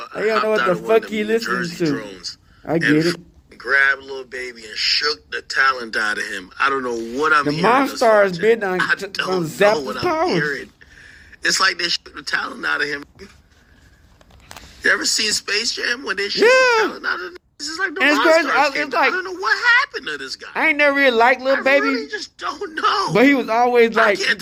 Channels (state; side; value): identical; both; correlation 1.00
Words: what out the of one of fuck he them New listening Jersey to. drones. I get it. Grabbed Lil Baby and shook the talent out of him. I don't know what I'm hearing. The Monstars been on Zap what I'm hearing. It's like they shook the talent out of him. You ever seen Space Jam when they shook the talent out of him? This is like the Monstars. I don't know what happened to this guy. I ain't never really liked Lil Baby. I really just don't know. But he was always like, you can